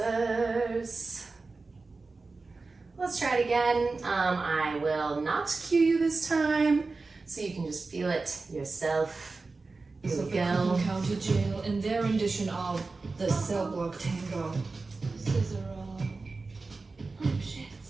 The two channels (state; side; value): quieter; left; 3.8 dB